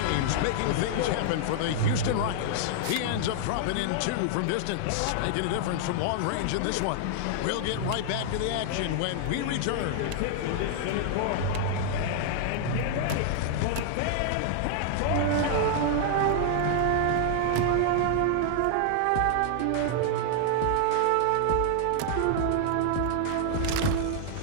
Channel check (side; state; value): both; different; correlation -0.01